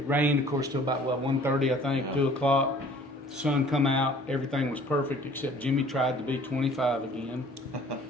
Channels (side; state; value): both; normal; correlation 0.52